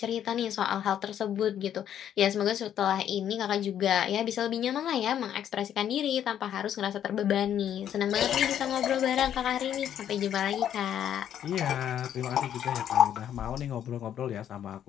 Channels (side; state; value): right; quieter; 10.1 dB